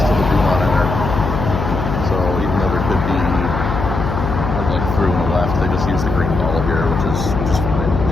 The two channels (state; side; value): noise; left; hum, 3 dB below the sound